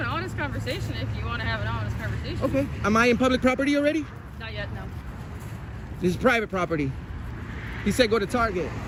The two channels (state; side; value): identical; both; correlation 1.00